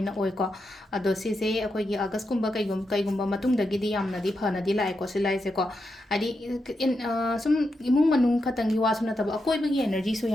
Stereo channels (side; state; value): both; normal; correlation 0.86